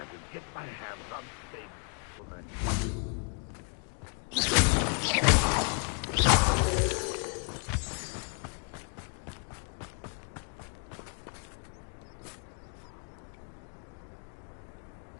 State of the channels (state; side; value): quieter; right; 39.1 dB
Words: could get my hands on